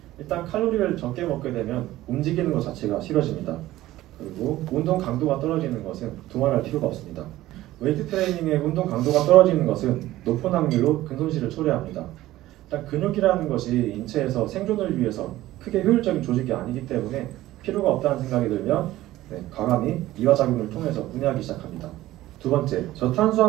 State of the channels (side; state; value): left; quieter; 15.8 dB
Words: 일단 칼로리를 적게 먹게 되면 움직이는 것 자체가 싫어집니다. 그리고 운동 강도가 떨어지는 것은 두말할 필요가 없습니다. 웨이트 트레이닝의 운동 강도가 떨어지는 것은 높은 확률로 근손실을 초래합니다. 일단 근육이라는 것이 인체에서 생존을 위해서 크게 효율적인 조직이 아니기 때문에 필요가 없다는 생각이 들면 과감히 이화작용을 통해서 분해하기 시작합니다. 두 번째,